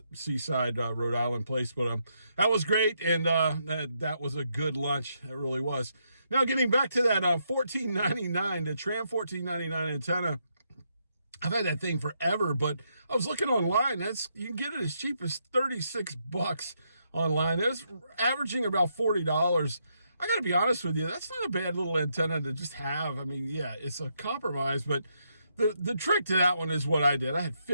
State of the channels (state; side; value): inverted; both; correlation -0.78